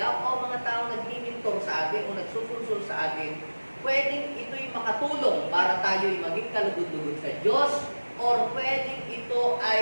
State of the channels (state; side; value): inverted; both; correlation -1.00